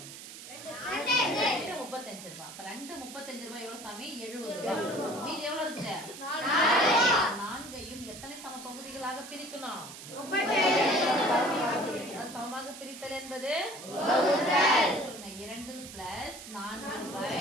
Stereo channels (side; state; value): right; noise; hiss, 13 dB below the sound